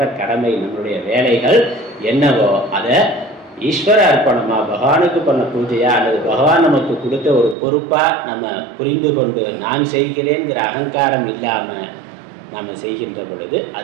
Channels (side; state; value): left; drops out; at 7.6 s